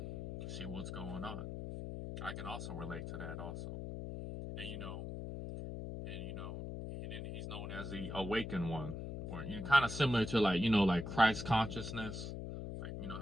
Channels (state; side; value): noise; left; hum, 6 dB below the sound